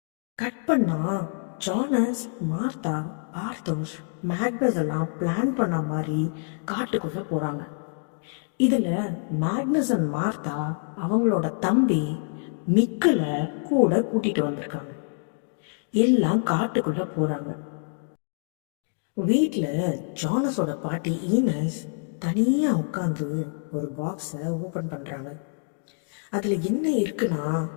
கட் பண்ணா ஜானஸ், மார்த்தா, பார்த்தோஷ், மேக்னஸ் எல்லாம் பிளான் பண்ண மாதிரி காட்டுக்குள்ளே போகிறாங்க. இதில் மேக்னஸ் அண்ட் மார்த்தா அவங்களோட தம்பி மிக்கில் கூட கூட்டிகிட்டு வந்திருக்காங்க. எல்லாம் காட்டுக்குள்ளே போகிறாங்க. வீட்டில் ஜானஸோட பாட்டி ஈனஸ் தனியாக உட்காந்து ஒரு பாக்ஸை ஓப்பன் பண்ணுறாங்க. அதில் என்ன இருக்குன்னா,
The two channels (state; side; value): silent; right; 61 dB below the other